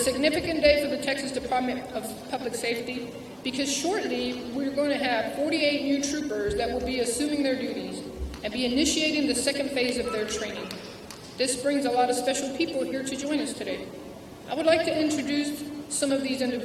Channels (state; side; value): identical; both; correlation 1.00